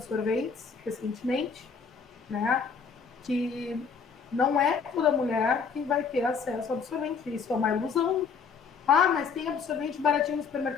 recentemente, né? que não é toda mulher que vai ter acesso ao absorvente. Isso é uma ilusão. Ah, mas tem absorvente baratinho no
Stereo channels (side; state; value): right; quieter; 5.8 dB